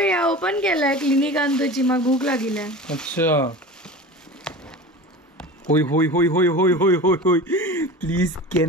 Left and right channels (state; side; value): normal; both; correlation 0.34